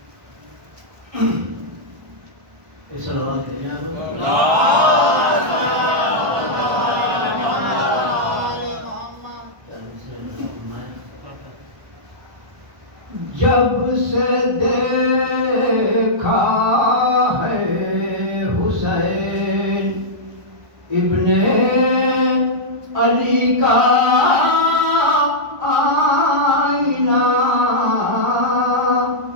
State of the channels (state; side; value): late; left; 1.2 ms